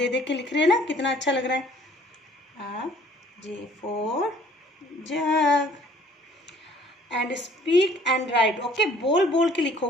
दे के लिख रहे हैं ना, कितना अच्छा लग रहा है। J for jug, and speak and right. Okay, बोल बोल के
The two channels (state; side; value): normal; both; correlation 0.56